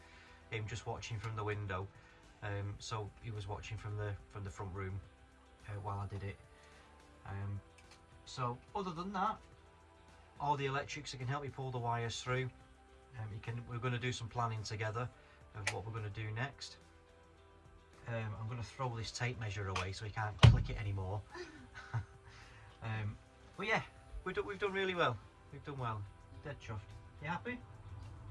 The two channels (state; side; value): identical; both; correlation 1.00